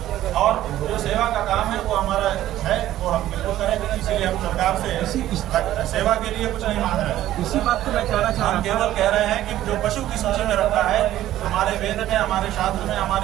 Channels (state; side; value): quieter; left; 13.5 dB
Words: और जो सेवा का काम है वो हमारा है, वो हम बिल्कुल करेंगे। इसीलिए हम सरकार से सेवा के लिए कुछ नहीं मांग रहे हैं। इसी बात को मैं कहना चाह रहा हूं। हम केवल कह रहे हैं कि जो पशु की सूची में रखा है हमारे वेद में, हमारे शास्त्र में,